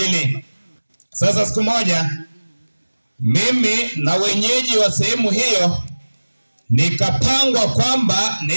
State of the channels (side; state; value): both; inverted; correlation -1.00